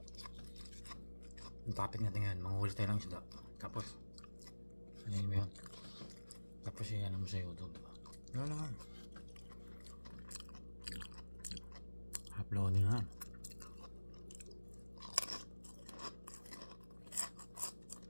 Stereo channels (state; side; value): inverted; both; correlation -1.00